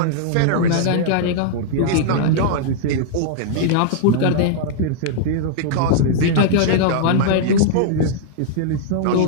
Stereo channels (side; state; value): both; different; correlation -0.01